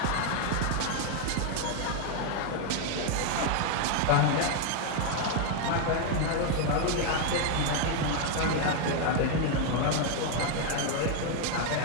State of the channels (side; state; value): both; different; correlation 0.01